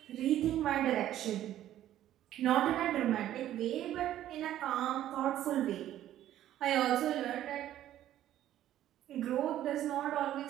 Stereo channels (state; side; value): quieter; left; 12.4 dB